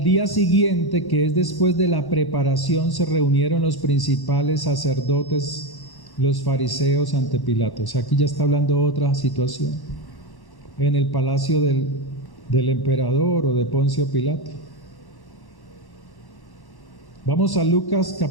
día siguiente, que es después de la preparación, se reunieron los principales sacerdotes, los fariseos ante Pilato. O sea, aquí ya está hablando otra situación. en el palacio del emperador o de Poncio Pilato. Vamos a Lucas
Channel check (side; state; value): right; late; 1.1 ms